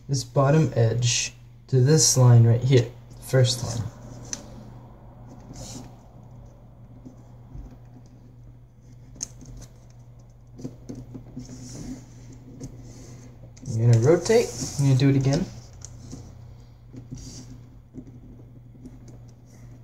this bottom edge to this line right here, first line. You're going to rotate, you're going to do it again.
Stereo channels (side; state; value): both; identical; correlation 1.00